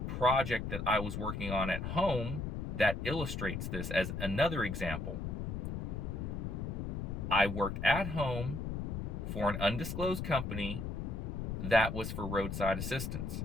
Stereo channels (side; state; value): left; noise; rumble, 3 dB below the sound